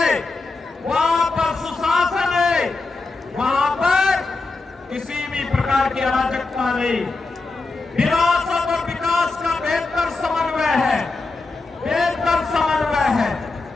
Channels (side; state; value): right; quieter; 3.7 dB